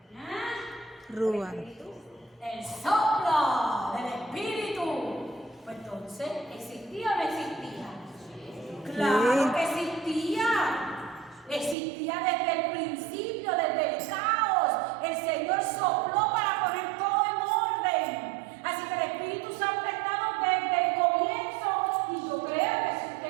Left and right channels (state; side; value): drops out; left; at 11.8 s